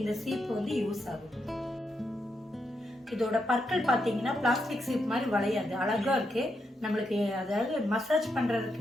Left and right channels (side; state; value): both; normal; correlation 0.82